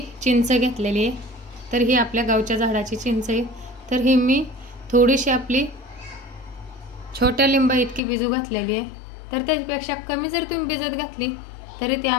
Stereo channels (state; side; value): drops out; right; at 8.0 s